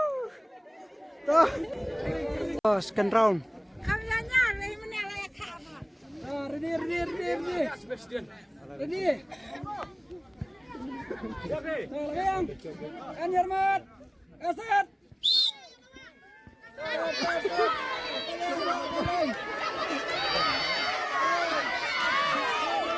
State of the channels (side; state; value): both; identical; correlation 1.00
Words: Oh, second round.